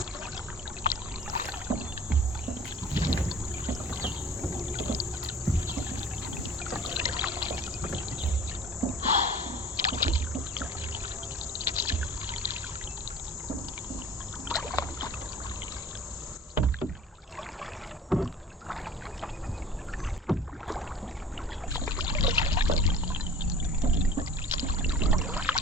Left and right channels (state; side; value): normal; both; correlation 0.44